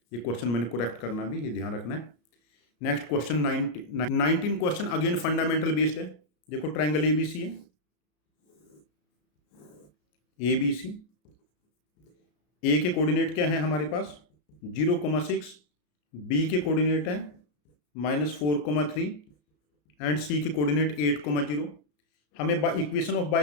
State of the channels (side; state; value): right; late; 33 ms